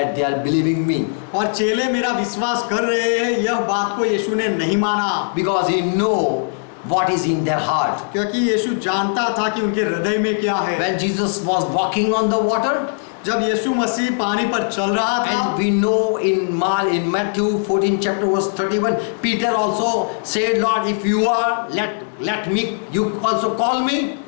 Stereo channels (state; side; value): silent; right; digital silence